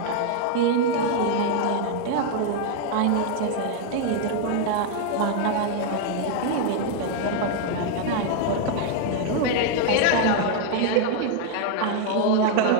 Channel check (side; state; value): both; different; correlation 0.00